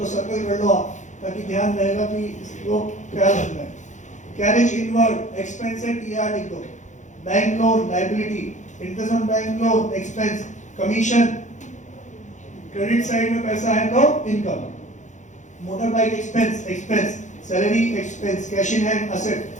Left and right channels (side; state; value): right; late; 0.35 ms